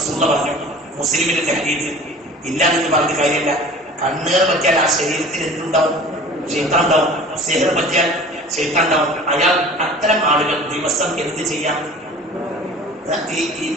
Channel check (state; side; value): normal; both; correlation 0.43